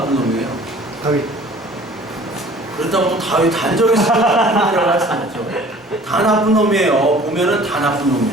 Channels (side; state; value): both; normal; correlation 0.49